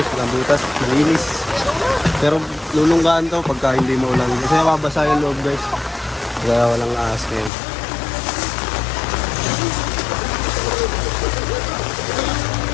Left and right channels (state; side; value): drops out; right; at 7.5 s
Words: walang butas, malinis. Pero lulunggaan to pagka hindi mo ulan. Kasi mababasa yung loob, guys. Kaya walang ahas ngayon.